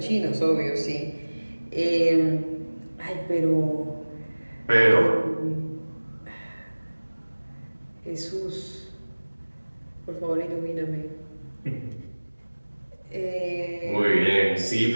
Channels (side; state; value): both; inverted; correlation -1.00